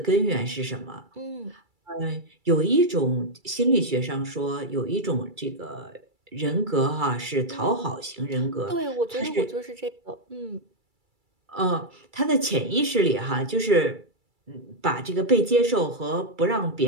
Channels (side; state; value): left; late; 2.3 ms